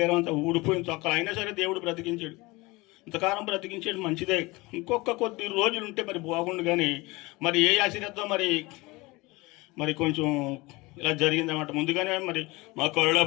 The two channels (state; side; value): quieter; right; 22.9 dB